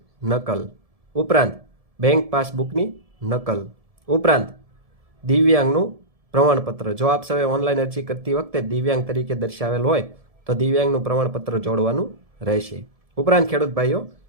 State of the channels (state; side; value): late; left; 1.7 ms